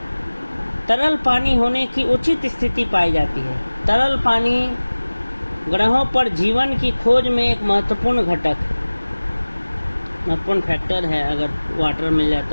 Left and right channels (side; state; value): both; inverted; correlation -1.00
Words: तरल पानी होने की उचित स्थिति पाई जाती है। तरल पानी ग्रहों पर जीवन की खोज में एक महत्वपूर्ण घटक, महत्वपूर्ण फैक्टर है। अगर वाटर मिल